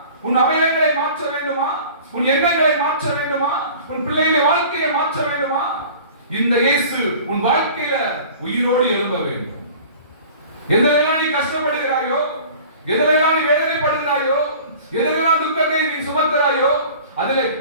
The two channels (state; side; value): inverted; both; correlation -0.43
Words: உன் அவயங்களை மாற்ற வேண்டுமா? உன் எண்ணங்களை மாற்ற வேண்டுமா? உன் பிள்ளைகளின் வாழ்க்கையை மாற்ற வேண்டுமா? இந்த இயேசு உன் வாழ்க்கையில உயிரோடு எழும்ப வேண்டும். எதெல்லாம் நீ கஷ்டப்படுகிறாயோ, எதெல்லாம் நீ வேதனைப்படுகிறாயோ, எதெல்லாம் துக்கத்தை நீ சுமக்கிறாயோ, அதில்